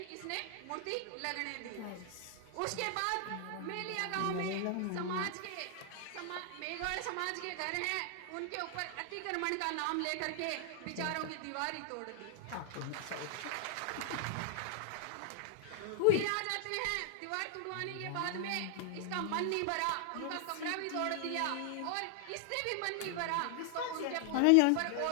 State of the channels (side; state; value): both; different; correlation 0.00